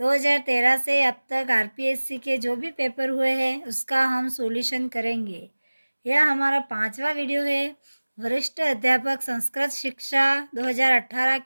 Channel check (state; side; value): inverted; both; correlation -1.00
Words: से अब तक आरपीएससी के जो भी पेपर हुए हैं उसका हम सॉल्यूशन करेंगे। यह हमारा 5वां वीडियो है। वरिष्ठ अध्यापक संस्कृत शिक्षा 2018